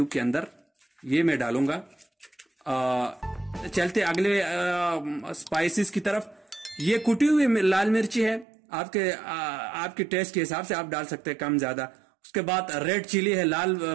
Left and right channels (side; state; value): left; drops out; at 8.5 s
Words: के अंदर, ये मैं डालूंगा। चलते अगले स्पाइसेस की तरफ। ये कुटी हुई लाल मिर्ची है, आपके टेस्ट के हिसाब से आप डाल सकते हैं, कम ज्यादा। उसके बाद रेड चिली है,